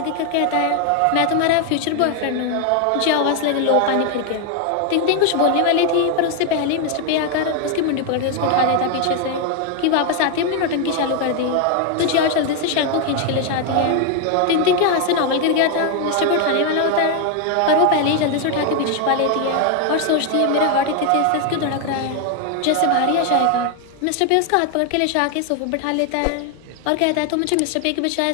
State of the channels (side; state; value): both; different; correlation 0.01